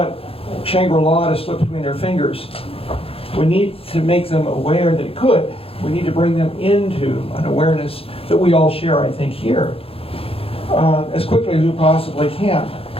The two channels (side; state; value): right; late; 0.27 ms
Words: Shangri-La to slip between their fingers. We need to make them aware that it could. We need to bring them into an awareness that we all share, I think, here, as quickly as we possibly can.